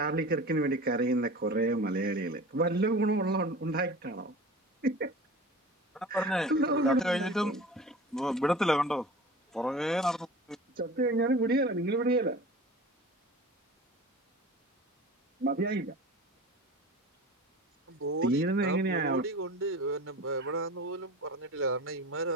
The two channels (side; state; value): both; normal; correlation 0.37